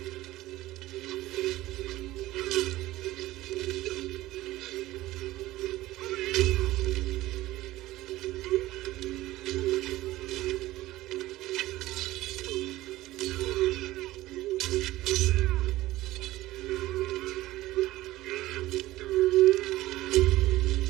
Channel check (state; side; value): quieter; left; 16.8 dB